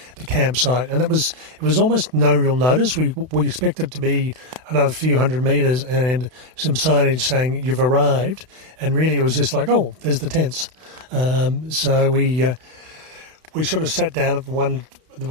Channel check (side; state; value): left; late; 32 ms